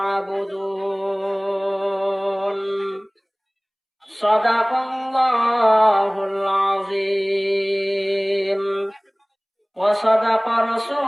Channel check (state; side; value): identical; both; correlation 1.00